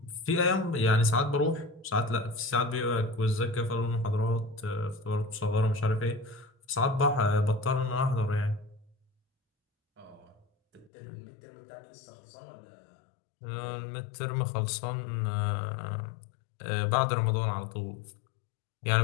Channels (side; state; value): right; drops out; at 10.9 s